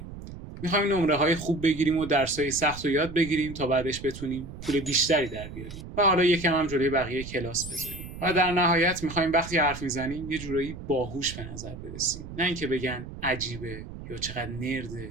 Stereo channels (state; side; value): noise; right; rumble, 12 dB below the sound